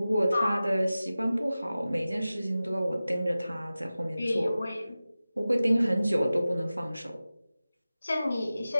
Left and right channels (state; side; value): inverted; both; correlation -0.96